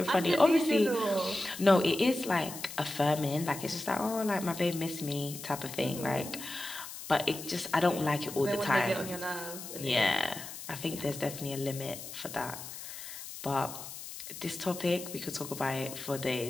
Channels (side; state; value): left; noise; hiss, 11 dB below the sound